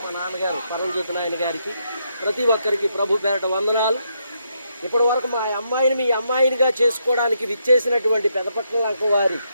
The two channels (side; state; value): both; inverted; correlation -0.78